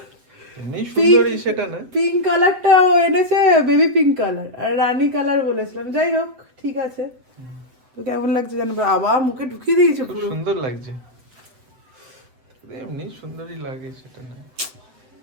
এমনি সুন্দরী সেটা না, পিঙ্ক কালারটা ও এনেছে, বেবি পিঙ্ক কালার, আর রানী কালার বলেছিলাম। যাই হোক, ঠিক আছে। তো কেমন লাগছে জানো, আবার মুখে ঢুকিয়ে দিয়েছে, খুব পুরো সুন্দর লাগছে। এমনি সুন্দরী লাগে সেটা না।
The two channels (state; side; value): late; left; 7.9 ms